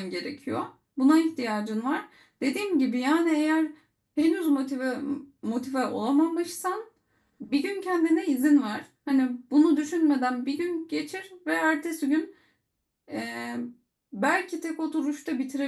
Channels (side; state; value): both; identical; correlation 1.00